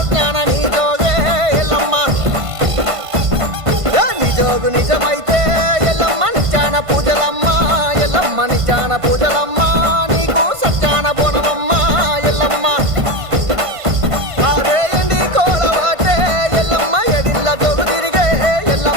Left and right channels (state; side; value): late; left; 1.5 ms